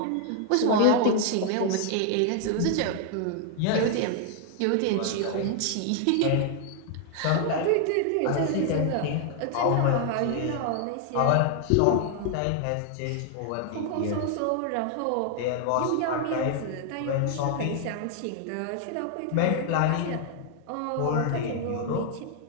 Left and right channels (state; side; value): different; both; correlation 0.00